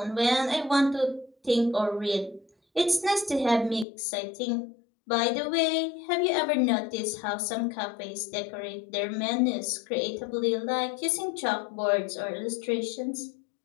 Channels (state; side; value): drops out; right; at 3.9 s